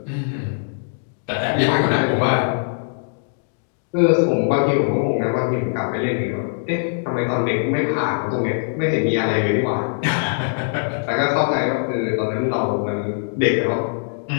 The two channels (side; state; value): right; silent; digital silence